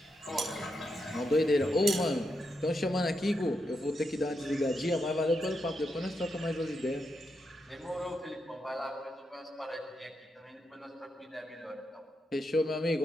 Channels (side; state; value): both; normal; correlation 0.84